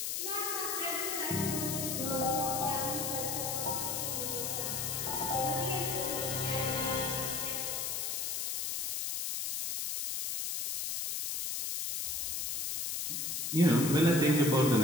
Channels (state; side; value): noise; left; hiss, 1 dB below the sound